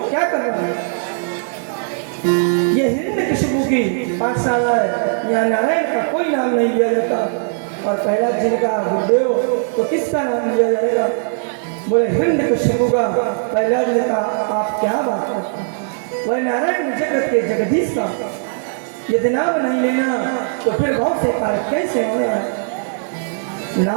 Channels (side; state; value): left; silent; digital silence